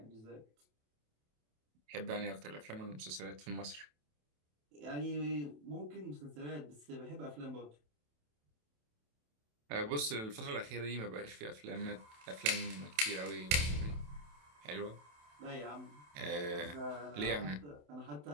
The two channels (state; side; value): late; left; 27 ms